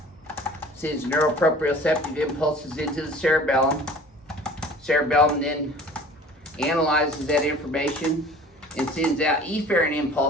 sends neuroproprioceptive impulses into the cerebellum. Cerebellum then analyzes that information and sends out efferent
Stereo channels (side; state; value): both; normal; correlation 0.46